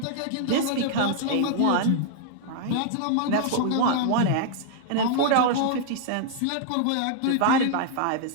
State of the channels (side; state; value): both; different; correlation 0.00